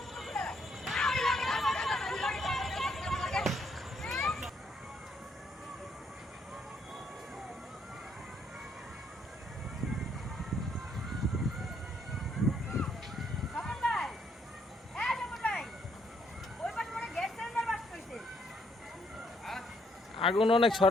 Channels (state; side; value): normal; both; correlation 0.70